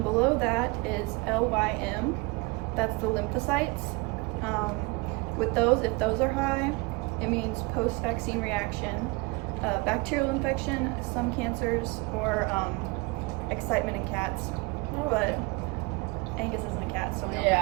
below that is LYM. That's the lymphocytes. With those, if those are high, it means post-vaccine reaction, bacterial infection, some cancers, or excitement in cats. Oh, but Angus isn't a cat, so we don't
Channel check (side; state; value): left; quieter; 26.2 dB